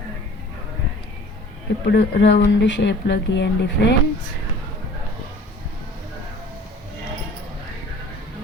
ఇప్పుడు రౌండ్ షేప్లో గీయండి ఫ్రెండ్స్.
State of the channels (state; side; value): normal; both; correlation 0.47